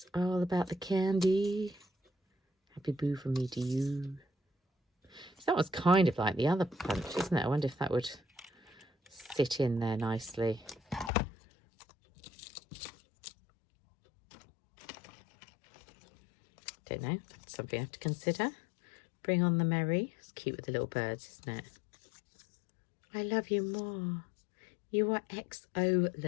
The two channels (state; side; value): drops out; right; at 11.1 s